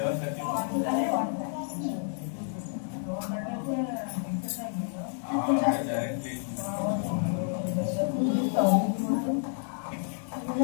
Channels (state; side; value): silent; right; 58 dB below the other